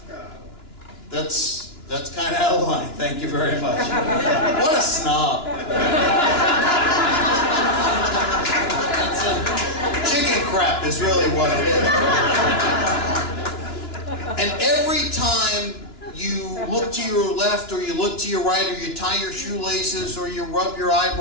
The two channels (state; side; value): late; right; 2.9 ms